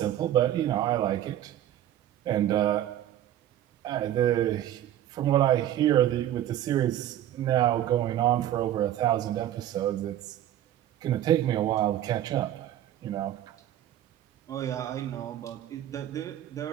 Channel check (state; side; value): quieter; left; 12.1 dB